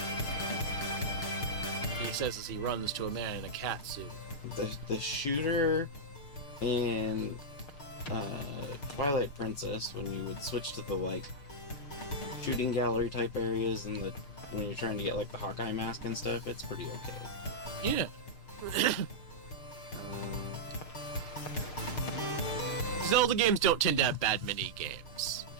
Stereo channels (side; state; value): right; late; 6.6 ms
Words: He says as he runs to a man in a cat suit. The shooter in Twilight Princess, when you would switch to the, like, shooting gallery type areas and when you're trying to get, like, the Hawkeye mask and stuff, it's pretty okay. Yeah. Zelda games don't tend to have bad mini games.